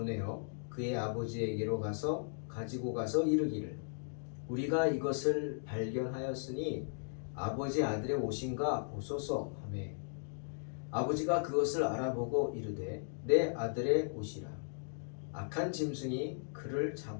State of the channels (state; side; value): silent; right; digital silence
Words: 그의 아버지에게로 가지고 가서 이르기를 우리가 이것을 발견하였으니 아버지 아들의 옷인가 보소서 하매 아버지가 그것을 알아보고 이르되 내 아들의 옷이라 악한 짐승이 그를